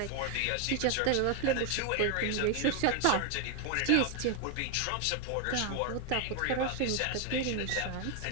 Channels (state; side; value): different; both; correlation 0.01